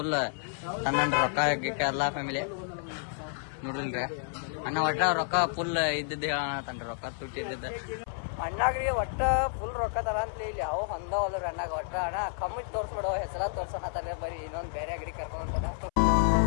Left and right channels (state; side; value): silent; right; 58 dB below the other